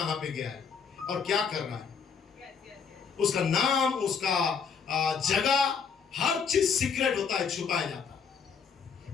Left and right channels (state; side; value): quieter; right; 6.3 dB